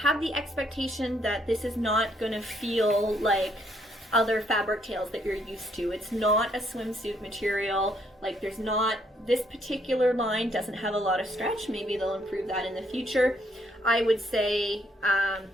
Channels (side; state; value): both; normal; correlation 0.70